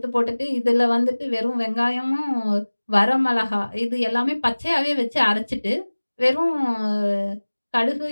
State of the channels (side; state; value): both; inverted; correlation -1.00